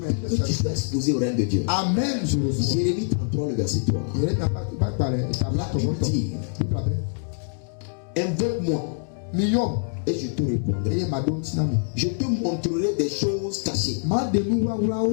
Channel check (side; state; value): right; silent; digital silence